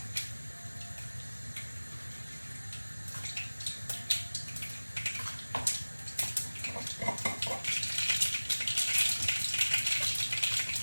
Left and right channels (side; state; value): both; inverted; correlation -1.00